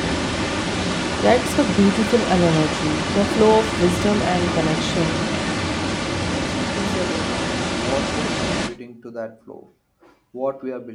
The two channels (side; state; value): both; identical; correlation 1.00